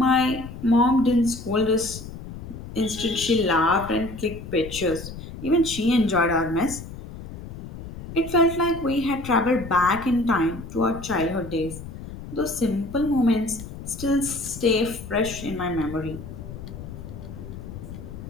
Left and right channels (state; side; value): noise; left; rumble, 12 dB below the sound